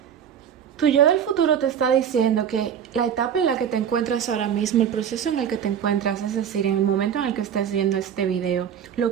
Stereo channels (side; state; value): left; quieter; 8.5 dB